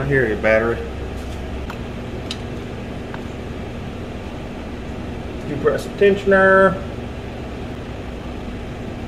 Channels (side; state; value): both; identical; correlation 1.00